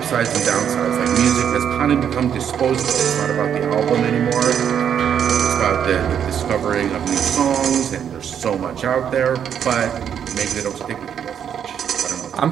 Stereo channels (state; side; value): quieter; left; 8.6 dB